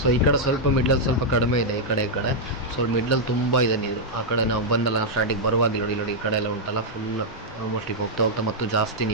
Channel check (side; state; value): both; normal; correlation -0.05